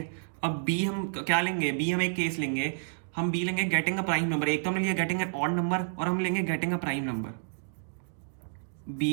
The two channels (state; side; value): silent; left; digital silence